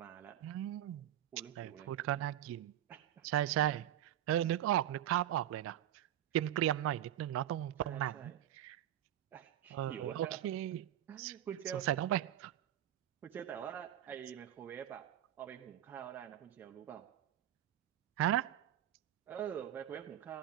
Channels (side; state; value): left; quieter; 12.0 dB